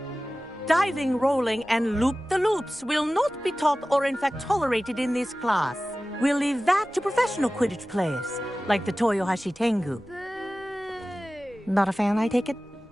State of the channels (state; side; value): normal; both; correlation 0.96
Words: Diving, rolling, and loop-the-loops will not be taught or in fact tolerated in this class. We'll leave that to professional Quidditch players, like the Toyohashi Tengu. Not a fan, I take it?